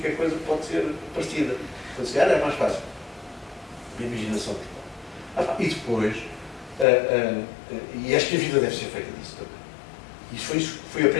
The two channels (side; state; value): right; drops out; at 6.9 s